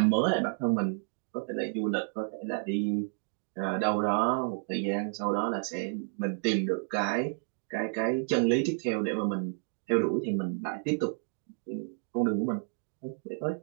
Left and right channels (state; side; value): silent; left; 57 dB below the other